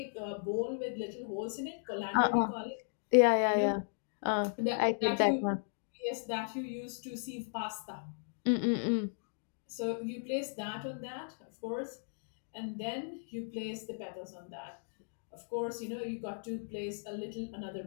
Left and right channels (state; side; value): silent; right; digital silence